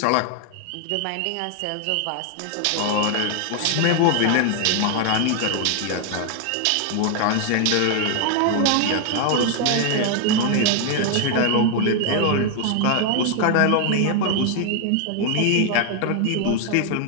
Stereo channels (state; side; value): different; both; correlation 0.00